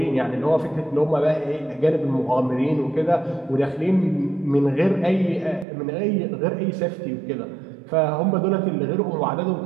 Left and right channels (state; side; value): drops out; left; at 5.7 s